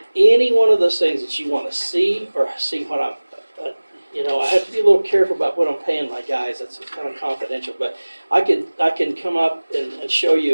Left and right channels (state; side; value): inverted; both; correlation -1.00